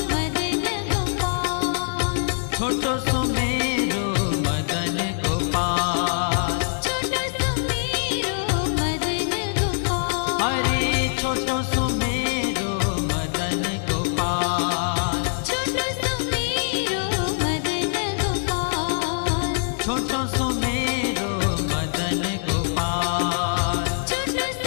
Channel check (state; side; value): silent; right; digital silence